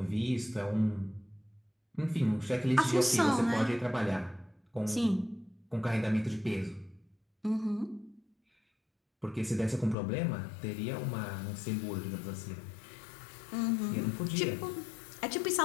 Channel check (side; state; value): right; drops out; at 10.0 s